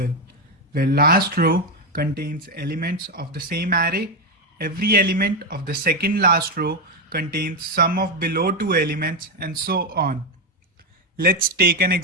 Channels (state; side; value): normal; both; correlation 0.08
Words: where last row contains elements of the same array. Every element of the second last row contains sum of below two elements and so on. Let's take an